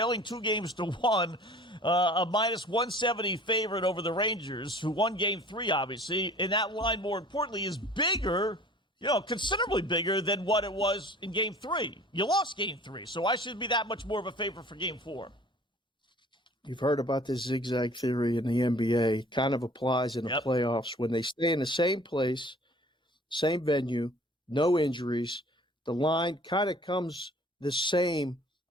2-1, a minus 170 favorite over the Rangers, who won Game 3, obviously, and that line, more importantly, is bigger, you know, considerably bigger than what it was in Game 3. You lost Game 3, so why should it be that much more of a favorite for Game 4? You've heard about this zigzag theory in the NBA. It kind of applies in the playoffs. When they stay in the same place, same venue, no injuries, the line kind of comes the same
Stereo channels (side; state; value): both; normal; correlation 0.48